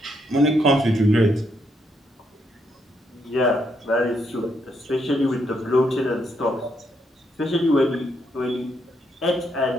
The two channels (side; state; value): both; normal; correlation 0.76